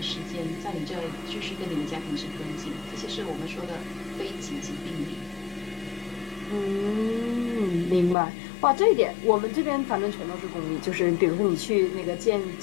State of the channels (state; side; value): drops out; right; at 8.2 s